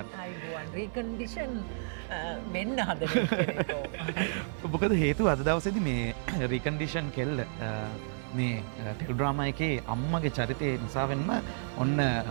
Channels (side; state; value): left; silent; 57 dB below the other